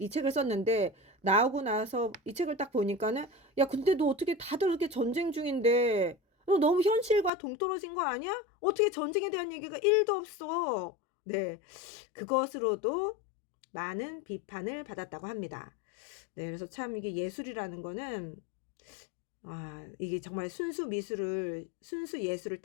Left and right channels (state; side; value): drops out; right; at 7.3 s